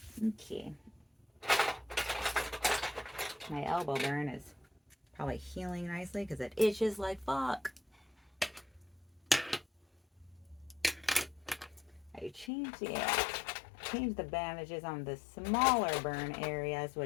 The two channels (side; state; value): right; drops out; at 12.5 s